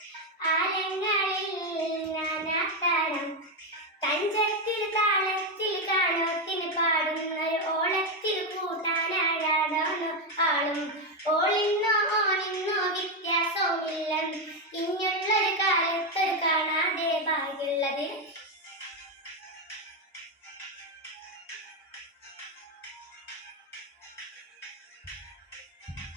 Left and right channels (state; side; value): normal; both; correlation 0.07